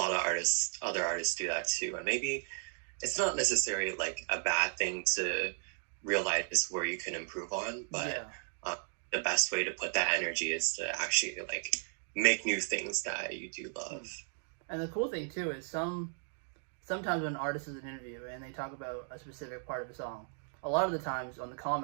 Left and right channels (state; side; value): silent; left; digital silence